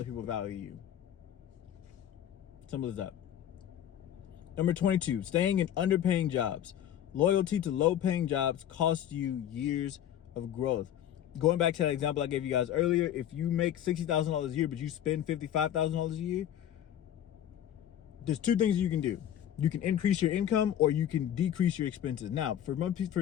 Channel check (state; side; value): quieter; right; 10.8 dB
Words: people value you. Simple as that. Number 22, staying in underpaying jobs. Loyalty to low-paying jobs costs you years of growth. Going back to that example I gave you guys earlier, if you make $60,000 a year, but you spend $55,000 a year, there's 2 things you can do. You can increase your income, or you can decrease your expenses. Now, for a